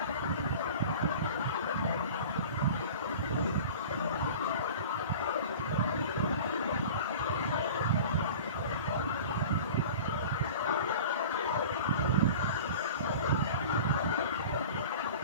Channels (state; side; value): inverted; both; correlation -0.38